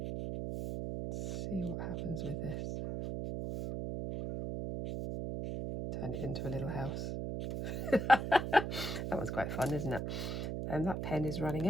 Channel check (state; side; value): noise; right; hum, 3 dB below the sound